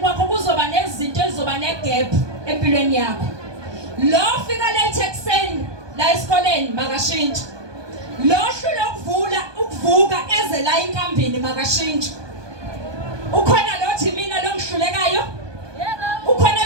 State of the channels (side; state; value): left; late; 1.2 ms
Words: kuzoba nezinto ezizoba negap empilweni yakho. Lo fika late ekseni la esikoleni makashintshe. Lohlule ukuvuka eze la inkambini makashintshe. Ukhona lothi mina lo ngihlulekayo? Yebo. Ukhona